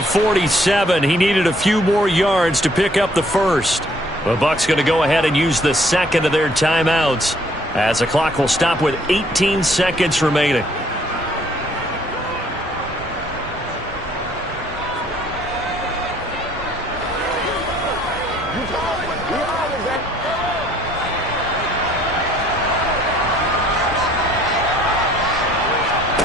47. He needed a few more yards to pick up the 1st. The Bucs going to go ahead and use the 2nd of their timeouts, as the clock will stop with 18 seconds remaining.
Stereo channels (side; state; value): both; normal; correlation 0.62